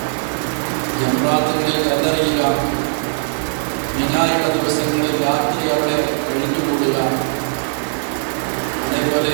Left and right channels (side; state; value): left; silent; digital silence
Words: ജംറാത്തുകളിൽ കല്ലെറിയുക, മിനായുടെ ദിവസങ്ങളിൽ രാത്രി അവിടെ കഴിഞ്ഞുകൂടുക,